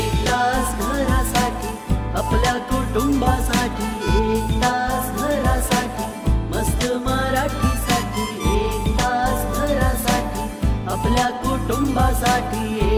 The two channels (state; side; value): identical; both; correlation 1.00